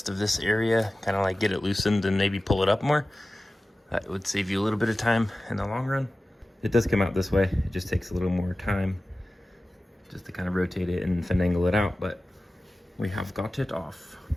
of this area, kind of like get it loosened and maybe pull it up more, that would save you a little bit of time in the long run. It does come out this way. It just takes a little more time just to kind of rotate it and finagle it out, but we have got it off.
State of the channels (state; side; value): normal; both; correlation 0.96